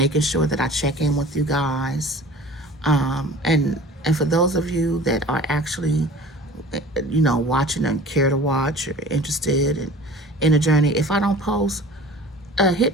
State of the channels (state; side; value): normal; both; correlation 0.43